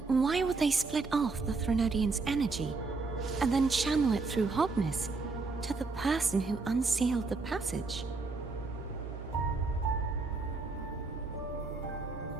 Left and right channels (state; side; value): quieter; left; 3.9 dB